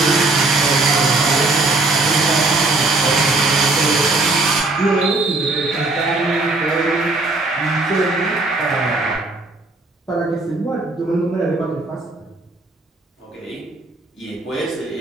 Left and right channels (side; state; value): left; quieter; 3.2 dB